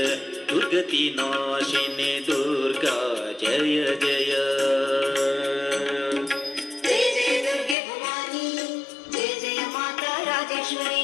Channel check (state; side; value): drops out; right; at 7.8 s